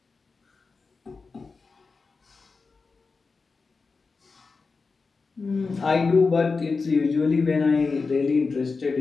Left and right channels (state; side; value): quieter; right; 4.4 dB